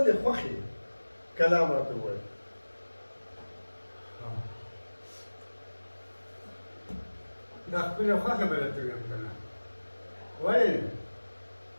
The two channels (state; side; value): inverted; both; correlation -1.00